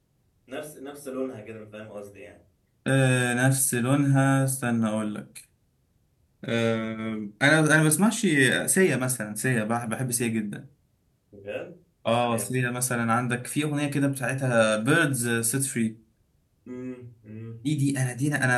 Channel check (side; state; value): both; identical; correlation 1.00